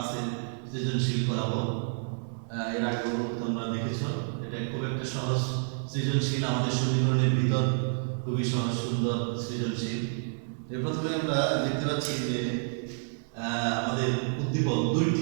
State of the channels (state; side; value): silent; left; 58 dB below the other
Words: সৃজনশীল করাবো। এর আগেও তোমরা দেখেছো, এটা খুব একটা সহজ সৃজনশীল, আমাদের সমীকরণের ভিতর খুবই সহজ সুন্দর সৃজনশীল। প্রথমে আমরা দেখতে পাচ্ছি যে আমাদের উদ্দীপক